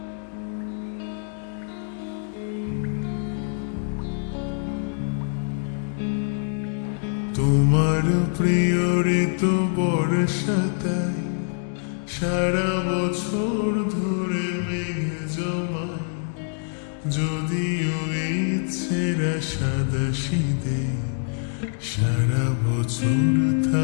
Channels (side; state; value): right; silent; 62 dB below the other